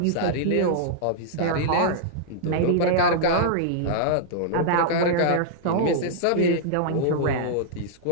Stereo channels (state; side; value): different; both; correlation -0.02